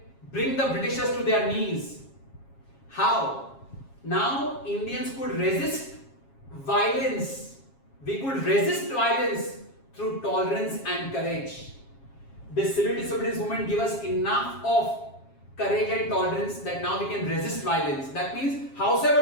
bring the Britishers to their knees. How? Now Indians could resist violence. We could resist violence through tolerance and courage. This civil disobedience movement gave us enough of courage and tolerance that now we can resist violence. That means,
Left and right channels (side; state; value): right; late; 7.3 ms